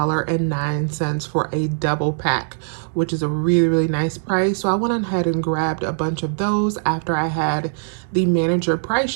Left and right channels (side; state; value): left; silent; digital silence